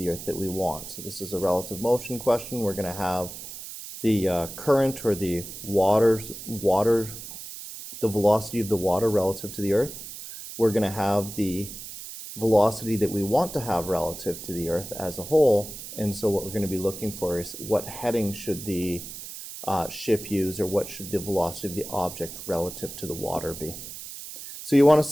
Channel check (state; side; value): noise; right; hiss, 11 dB below the sound